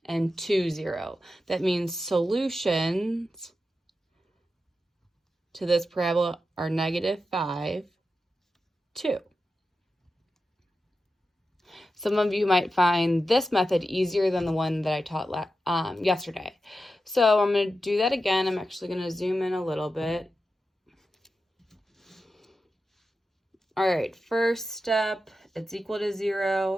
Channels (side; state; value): both; normal; correlation 0.91